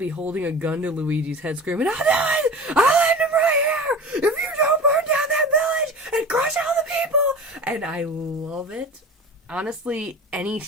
holding a gun to Luigi's head screaming, I'll do it! I'll end him right here! If you don't burn down that village and crush all the people! And I love it. Honestly, any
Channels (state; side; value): normal; both; correlation 0.35